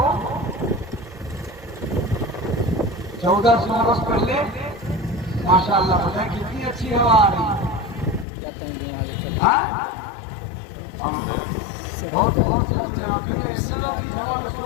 1400 برس پہلے ماشاءاللہ بتائیں کتنی اچھی ہوا آ رہی ہے،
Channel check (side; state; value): right; drops out; at 8.2 s